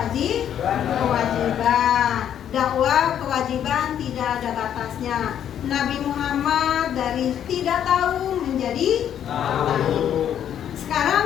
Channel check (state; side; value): quieter; right; 9.7 dB